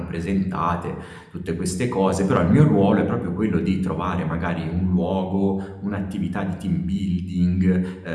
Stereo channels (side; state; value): both; identical; correlation 1.00